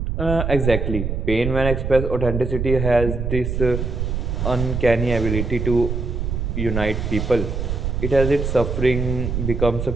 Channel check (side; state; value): right; noise; rumble, 2 dB below the sound